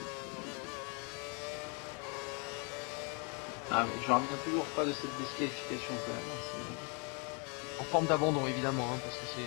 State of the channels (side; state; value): right; quieter; 35.6 dB